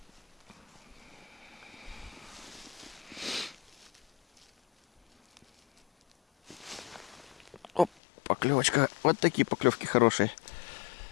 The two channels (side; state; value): right; drops out; at 7.9 s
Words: Оп, поклевочка. Вот такие поклевки хорошие.